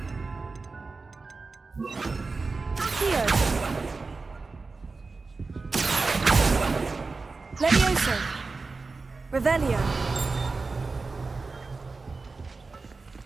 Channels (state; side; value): quieter; left; 4.0 dB